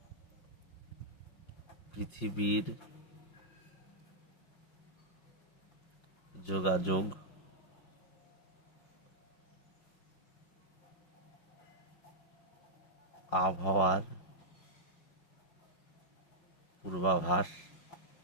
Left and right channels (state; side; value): late; right; 5.6 ms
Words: পৃথিবীর যোগাযোগ, আবহাওয়ার পূর্বাভাস,